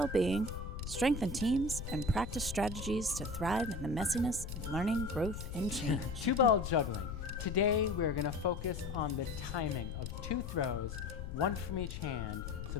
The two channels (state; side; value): noise; left; rumble, 7 dB below the sound